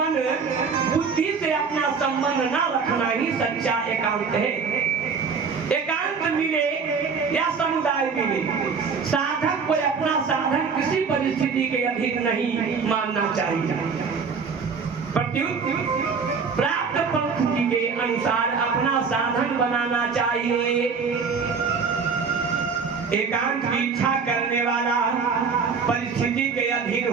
बुद्धि से अपना संबंध न रखना ही सच्चा एकांत है। एकांत मिले या समुदाय मिले, साधक को अपना साधन किसी परिस्थिति के अधीन नहीं मानना चाहिए। प्रत्युत प्राप्त परिस्थिति के अनुसार अपना साधन बनाना चाहिए। एकांत की इच्छा करने वाला परिस्थिति के अधीन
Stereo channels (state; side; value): quieter; left; 5.5 dB